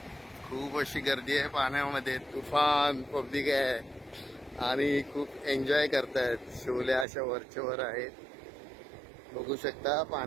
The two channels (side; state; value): left; drops out; at 7.1 s